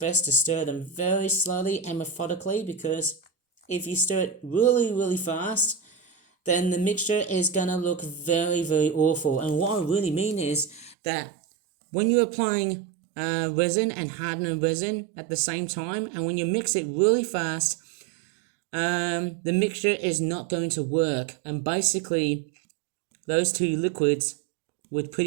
to stir them very slowly and methodically, because if you stir it really, really fast, then the mixture is going to look very, very awful. And what I really mean is that when you're applying resin and hardener resin at the same time, and when you mix it really fast, the mixture is not going to work. And basically, those two liquids would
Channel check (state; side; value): drops out; left; at 11.0 s